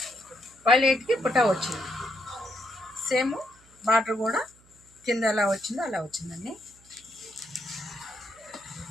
వైలెట్కి బుట్ట వచ్చింది. సేమ్ బార్డర్ కూడా కింద ఎలా వచ్చిందో అలా వచ్చిందండి.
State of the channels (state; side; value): noise; right; hum, 28 dB below the sound